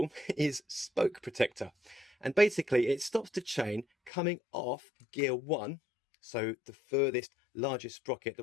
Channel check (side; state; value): right; drops out; at 4.1 s